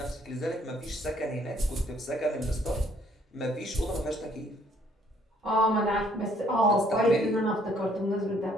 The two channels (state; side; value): normal; both; correlation 0.64